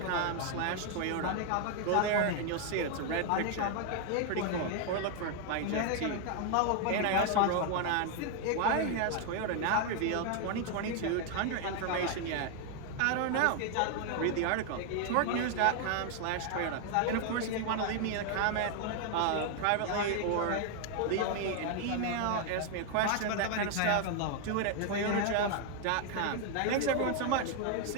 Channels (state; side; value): different; both; correlation 0.00